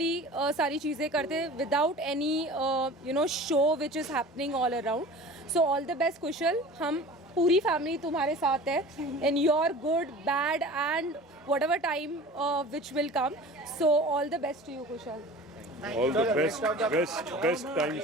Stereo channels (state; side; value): normal; both; correlation 0.40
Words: सारी चीज़ें करते हैं, without any show which is happening all around. So all the best Kushal, हम पूरी फैमिली तुम्हारे साथ है in your good, bad and whatever time which will come. So all the best to you Kushal. All the best